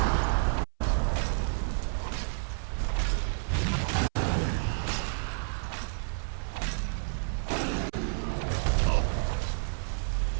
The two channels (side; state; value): left; silent; 58 dB below the other